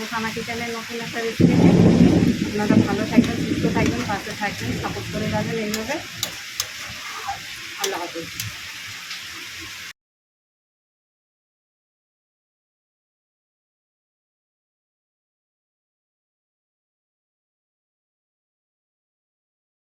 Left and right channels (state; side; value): identical; both; correlation 1.00